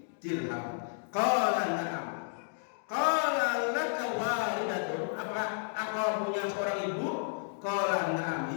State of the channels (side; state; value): right; silent; digital silence